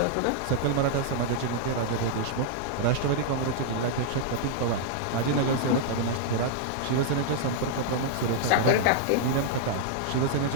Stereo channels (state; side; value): different; both; correlation -0.01